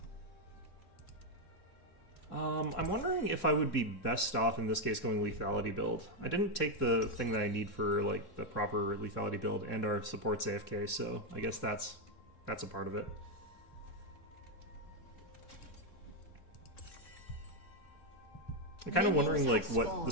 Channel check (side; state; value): right; late; 3.7 ms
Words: I'm wondering if I would be best off in this case going lethality build. I didn't take the thing that I need for like the proper lethality build and our supports AFK, so I guess that's a part of it. I'm kind of wondering like what the